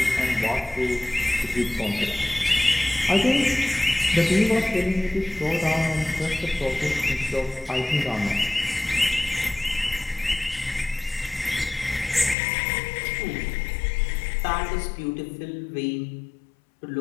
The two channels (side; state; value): right; drops out; at 12.4 s